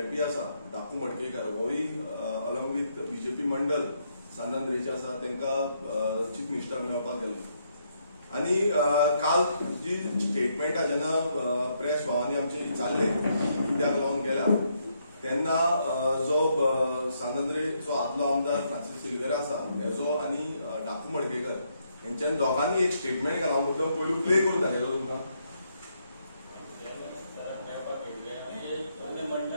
आसा डाकू मडकेकर होय अलॉंग विथ बीजेपी मंडल सांत आंद्रेचे आसा तांकां चीफ मिनिस्टर मेळपाक गेल्लो आनी काल जी स्टेटमेंटा जेन्ना प्रेस भावांनी आमचे चालले कित्याक लागून गेल्या तेन्ना जो सांत आंद्रेचो आदलो आमदार फ्रांसिस सिल्वेरा आसा हेजो आनी डाकू मडकेकर हेंच्यान दोगांनी एक स्टेटमेंट केला हांव मुद्दम पयलू प्ले करून दाखयलो तुमकां.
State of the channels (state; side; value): inverted; both; correlation -0.76